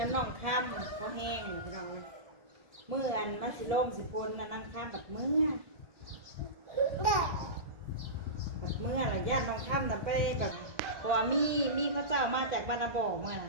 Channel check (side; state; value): left; late; 1.7 ms